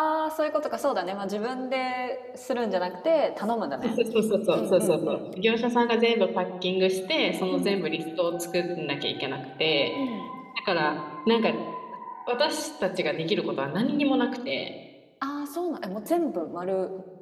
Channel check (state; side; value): identical; both; correlation 1.00